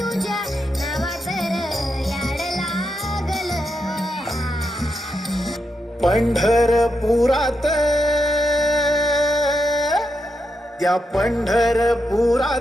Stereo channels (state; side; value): normal; both; correlation 0.84